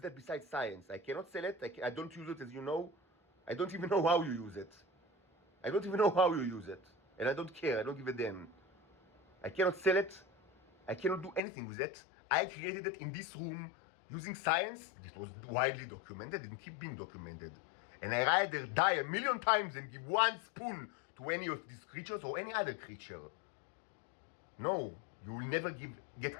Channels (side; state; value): right; drops out; at 11.4 s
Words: that besides science. I cannot sell it. I don't use it, as you know. I don't even know how you use it. I don't even know how you use it. And I don't care. I don't give a damn. I cannot sell it. I cannot do anything with it. I created it in this room using science. This was widely documented and keep being documented. And I rather die 1,000,000 times than give one spoon to any of these creatures or any other creature. No, you will never get